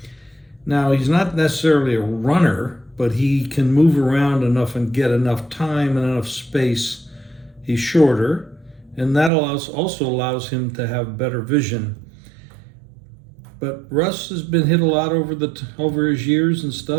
Now, he's not necessarily a runner, but he can move around enough and get enough time and enough space. He's shorter, and that also allows him to have better vision. But Russ has been hit a lot over his years and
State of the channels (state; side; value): drops out; left; at 9.3 s